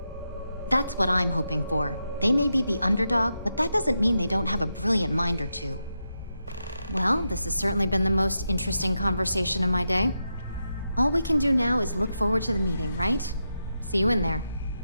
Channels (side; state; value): both; inverted; correlation -0.86